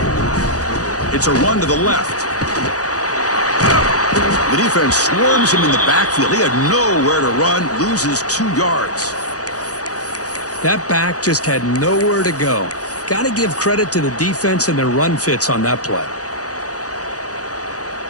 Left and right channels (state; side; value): late; right; 0.67 ms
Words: It's a run to the left. The defense swarms him in the backfield. He had nowhere to run, loses 2 yards. That back just had nowhere to go. Got to give credit to the defense and their run fits on that play.